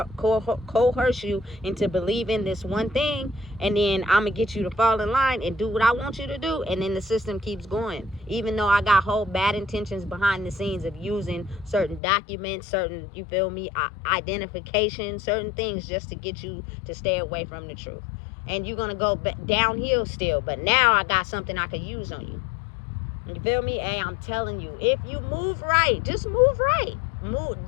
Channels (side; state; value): right; drops out; at 12.0 s